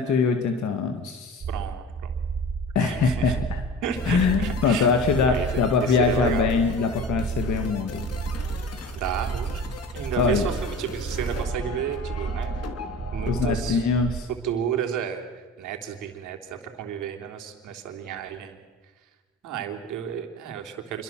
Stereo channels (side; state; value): both; normal; correlation 0.37